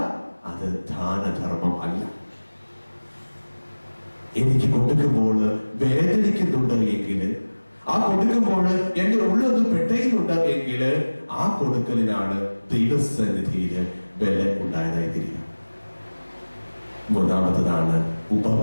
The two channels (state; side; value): inverted; both; correlation -1.00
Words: അത് ദാനധർമ്മം അല്ല. എനിക്ക് കൊടുക്കുമ്പോൾ വേദനിക്കുന്നുണ്ട് എങ്കിൽ, ആ കൊടുക്കുമ്പോൾ എന്റെ ഉള്ളൊന്ന് പെട്ടയുന്നുണ്ട് എങ്കിൽ, ആ കൊടുക്കലിനാണ് ദൈവസന്നിധിയിൽ വില ഉണ്ടായതായി തീരുക. മൂന്നാമത്തതാണ്